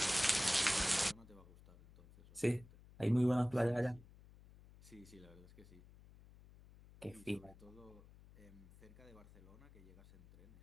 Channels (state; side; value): noise; left; hum, 21 dB below the sound